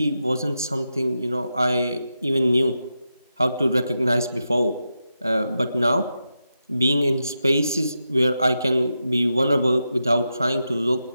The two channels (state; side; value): inverted; both; correlation -0.88